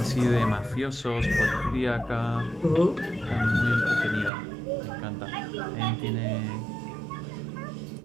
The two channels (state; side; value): drops out; left; at 4.3 s